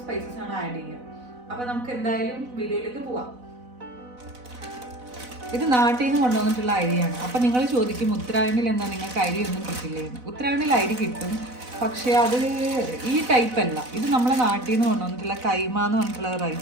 സ്പൈസസ് ആണ് ആഡ് ചെയ്യുക. അപ്പം നമുക്ക് എന്തായാലും വീഡിയോയിലേക്ക് പോവാം. ഇത് നാട്ടിൽ നിന്ന് കൊണ്ടുവന്നിട്ടുള്ള അരിയാണ്. അപ്പം നിങ്ങൾ ചോദിക്കും ഉത്തരാഖണ്ഡിൽ എന്താ നിങ്ങൾക്ക് അരിയൊന്നും കിട്ടില്ലേന്ന്. ഉത്തരാഖണ്ഡിൽ അരി കിട്ടും, പക്ഷേ അത് ഈ ടൈപ്പ് അല്ല. ഇത് നമ്മളെ നാട്ടിൽ നിന്ന് കൊണ്ടുവന്നിട്ടുള്ള കൈമ എന്ന് പറഞ്ഞിട്ടുള്ള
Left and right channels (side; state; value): left; late; 4.0 ms